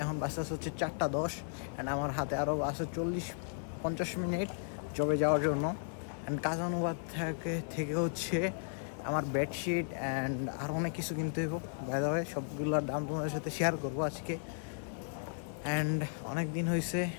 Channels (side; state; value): right; silent; digital silence